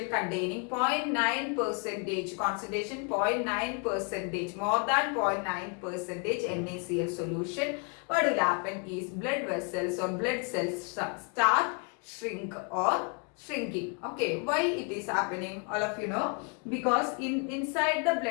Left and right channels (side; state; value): right; quieter; 35.9 dB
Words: containing 0.9 percentage concentration, 0.9 percentage, more than 0.9 percentage NaCl solution, what will happen is blood vessels or blood cells start shrink or shrinking. Okay, why it is happening? All of you know, because inside the